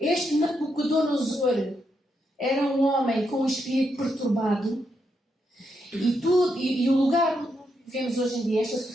Nabucodonosor era um homem com um espírito perturbado. E o lugar onde nós vivemos hoje em dia, esta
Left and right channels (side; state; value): both; normal; correlation 0.81